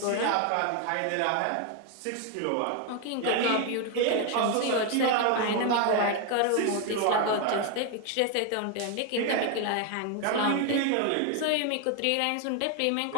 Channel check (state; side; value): different; both; correlation 0.01